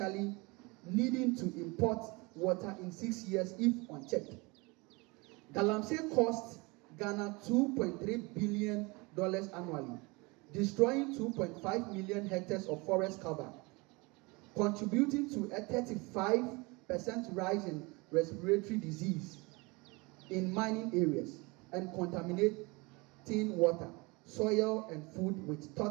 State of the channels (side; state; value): left; quieter; 26.2 dB